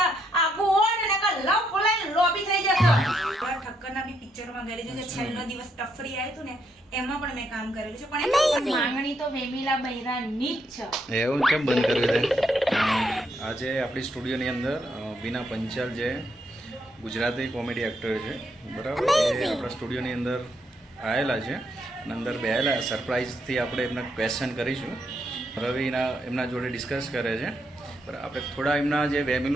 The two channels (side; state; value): both; normal; correlation 0.76